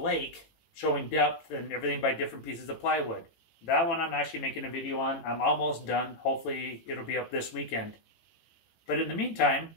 showing depth and everything by different pieces of plywood. That one I'm actually making a video on. I'm almost done. Hopefully it'll be up this weekend. But in the meantime,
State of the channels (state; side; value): late; right; 18 ms